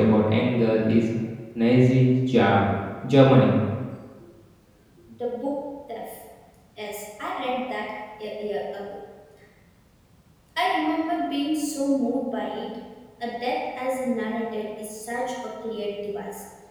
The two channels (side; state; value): both; identical; correlation 1.00